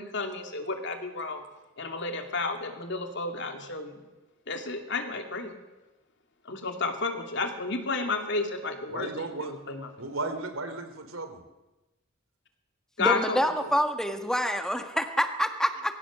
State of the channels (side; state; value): both; normal; correlation 0.38